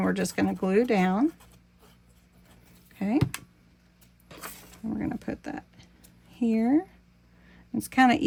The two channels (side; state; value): both; identical; correlation 1.00